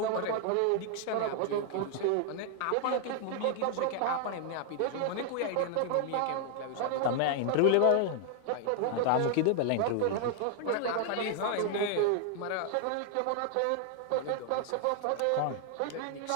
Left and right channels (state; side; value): different; both; correlation 0.00